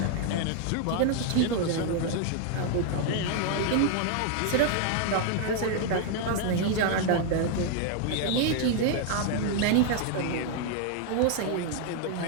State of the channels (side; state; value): both; different; correlation 0.00